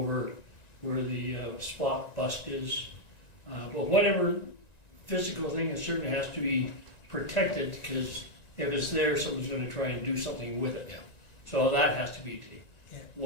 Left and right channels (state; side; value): late; right; 1.9 ms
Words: where the spot bust is. But whatever physical thing, it certainly has to be protected, because if it's there, someone's gonna try and do something with it. Yeah. So that has to be. Yeah.